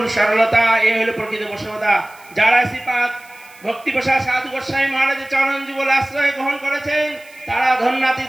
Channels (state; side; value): noise; right; hiss, 26 dB below the sound